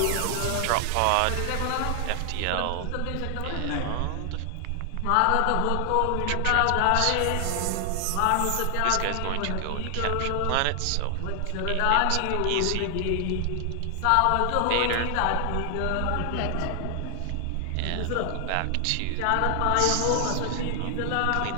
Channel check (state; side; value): different; both; correlation 0.00